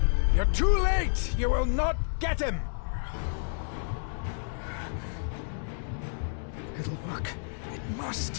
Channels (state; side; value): silent; right; digital silence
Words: You're too late! You will not get him! It'll work. It